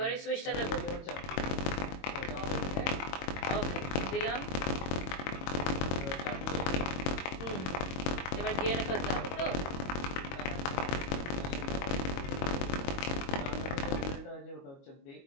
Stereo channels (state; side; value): late; right; 22 ms